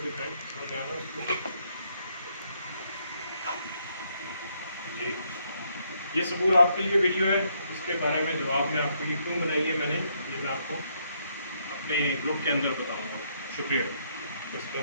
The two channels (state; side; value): inverted; both; correlation -0.73